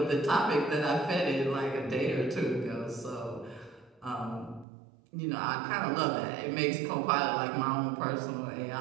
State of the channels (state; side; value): drops out; left; at 4.7 s